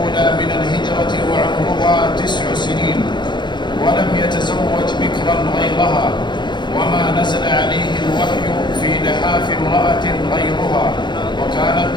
من الهجرة وعمرها 9 سنين، ولم يتزوج بكرا غيرها، وما نزل عليه الوحي في لحاف امرأة غيرها، وكانت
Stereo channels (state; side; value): late; right; 0.22 ms